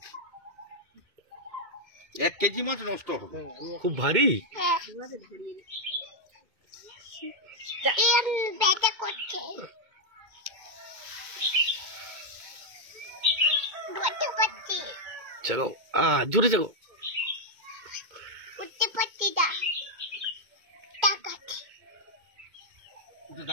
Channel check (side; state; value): left; late; 2.2 ms